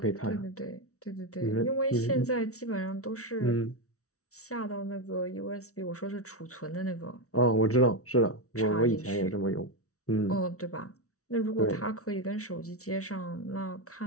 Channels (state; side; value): late; right; 0.64 ms